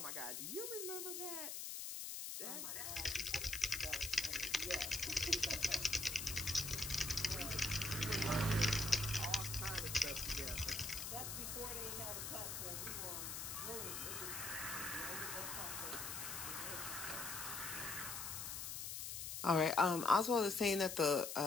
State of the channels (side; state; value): left; noise; hiss, 5 dB below the sound